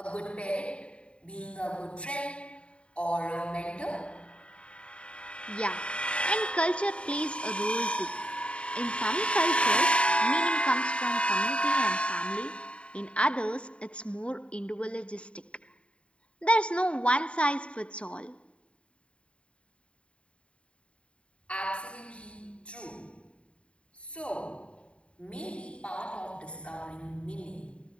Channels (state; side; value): late; right; 0.059 ms